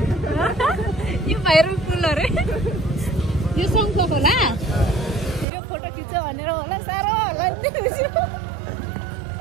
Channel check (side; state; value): left; drops out; at 5.5 s